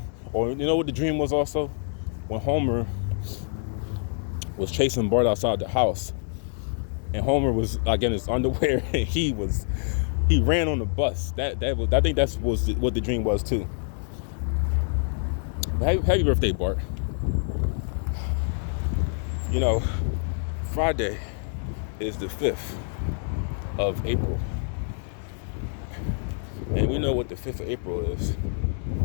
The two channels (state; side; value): silent; right; 61 dB below the other